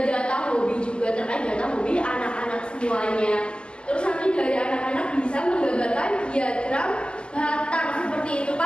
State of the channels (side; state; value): right; late; 0.050 ms